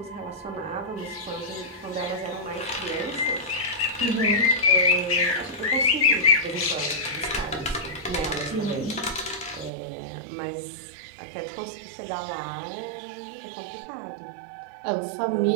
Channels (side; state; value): left; drops out; at 9.7 s